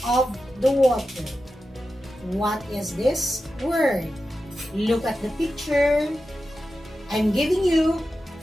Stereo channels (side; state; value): both; normal; correlation 0.92